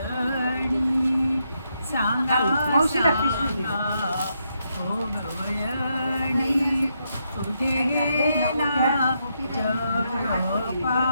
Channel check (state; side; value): inverted; both; correlation -0.80